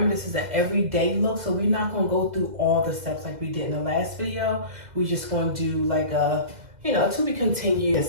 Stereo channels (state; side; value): late; left; 2.1 ms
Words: this is an everyday look, so we're not going to go through all the steps like we did in the last video. We're just going to do like a, you know, to be